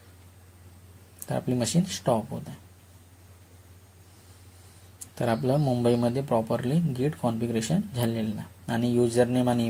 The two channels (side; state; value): both; identical; correlation 1.00